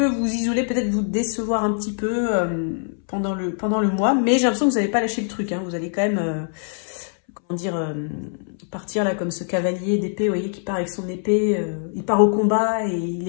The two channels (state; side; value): silent; right; 63 dB below the other